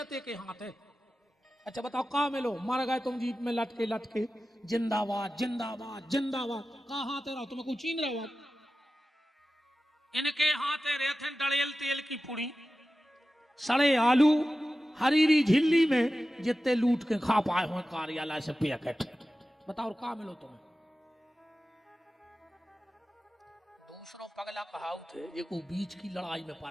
के हाथ है। अच्छा बताओ कहा मिलो, मर गए तुम जीप में लटके लटके, जिंदाबाद जिंदाबाद जिंदाबाद, कहा हाथ रहो तुम्हें कुछ छीन रहे हो। इनके हाथ रहते डड़ेल तेल की पुड़ी, सड़े आलू, हरीरी झिल्ली में जितने लूट के खा पाए हो कार्यालय से पैकेट। बताओ कहा मिलो तुम्हें। दूसरों पगला कहावत है, ये को बीच की लड़ाई में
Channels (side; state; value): both; normal; correlation 0.95